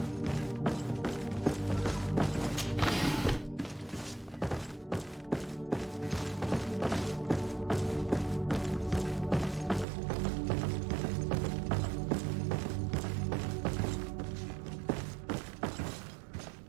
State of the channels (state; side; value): drops out; left; at 9.9 s